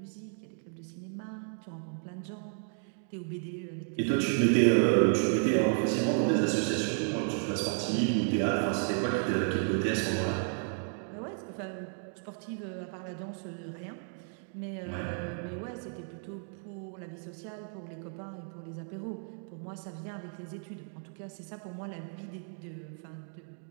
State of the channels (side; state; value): left; silent; 56 dB below the other